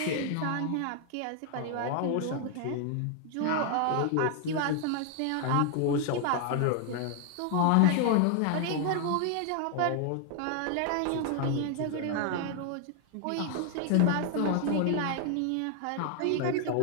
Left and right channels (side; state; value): both; different; correlation 0.00